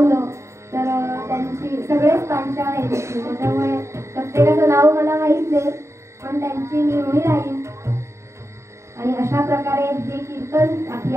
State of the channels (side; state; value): left; late; 0.14 ms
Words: तर त्यांची सगळेच पांचाळ आहेत इथे, त्याच्यामुळे प्रत्येकाचं नाव मला माहीत नाही, पण त्यांची मी ऋणी राहीन. आणि अशा प्रकारे हे कीर्तन, आपली